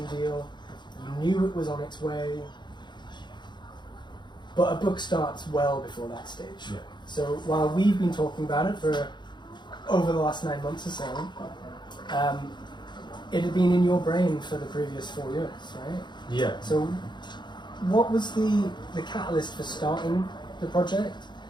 deal. You knew it was on its way. But a book starts well before that stage. Yeah. So while we've been talking about it for over the last 9 months or so, it had been in your brain for the previous 4 years, right? Yeah. So what was the catalyst for starting the project?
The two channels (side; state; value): right; late; 0.22 ms